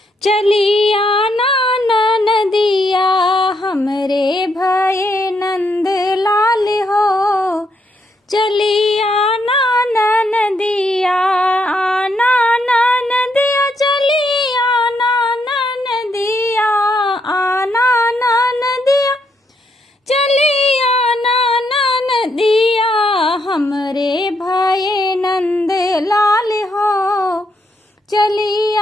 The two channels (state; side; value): normal; both; correlation 0.77